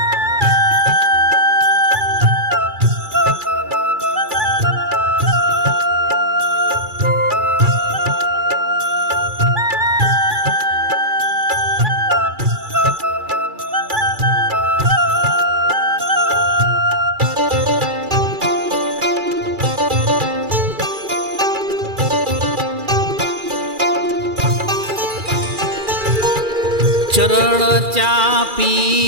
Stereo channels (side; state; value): left; late; 2.3 ms